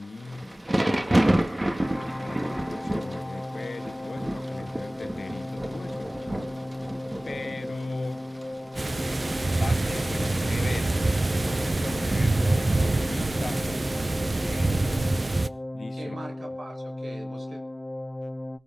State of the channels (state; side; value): normal; both; correlation 0.98